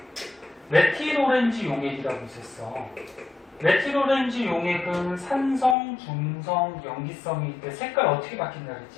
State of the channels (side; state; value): right; drops out; at 5.8 s